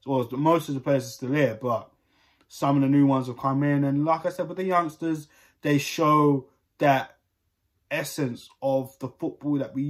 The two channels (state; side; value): identical; both; correlation 1.00